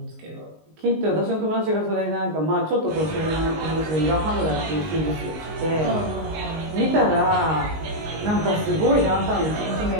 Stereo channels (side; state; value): left; late; 19 ms